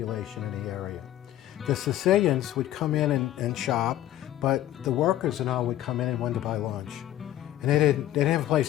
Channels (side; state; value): right; quieter; 13.3 dB